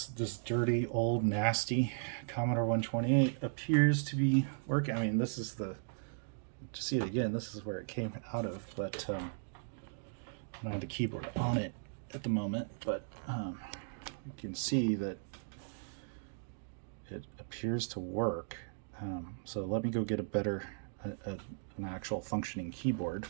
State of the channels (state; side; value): silent; left; digital silence